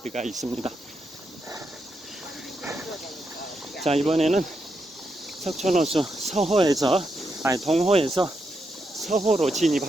있습니다. 자, 이번에는 석촌호수 동호에서 서호로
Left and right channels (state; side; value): normal; both; correlation 0.83